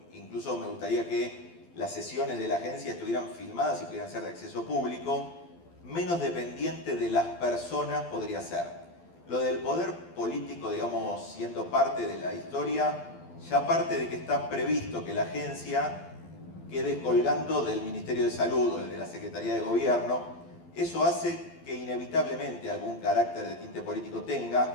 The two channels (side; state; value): right; late; 12 ms